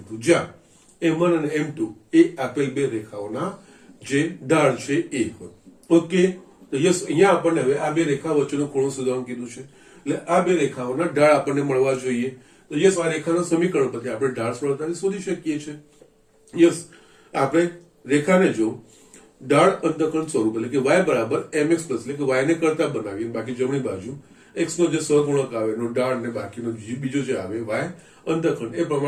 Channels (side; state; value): both; identical; correlation 1.00